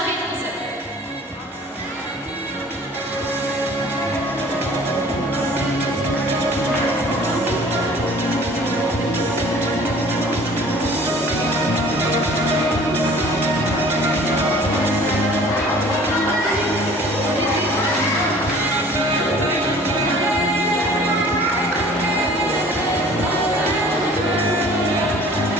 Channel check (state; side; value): normal; both; correlation 0.49